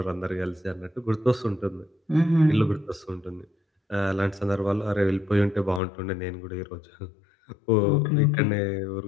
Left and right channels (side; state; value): right; drops out; at 5.8 s